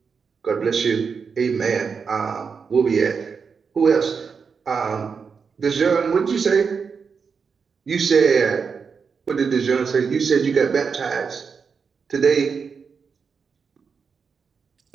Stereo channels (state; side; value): quieter; left; 5.7 dB